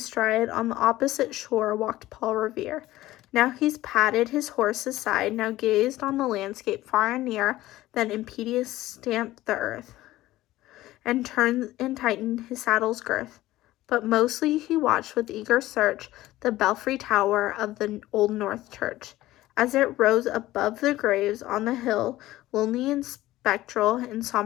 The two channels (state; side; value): quieter; right; 16.2 dB